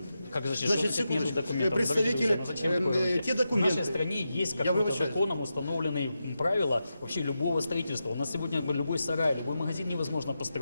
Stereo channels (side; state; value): both; inverted; correlation -0.89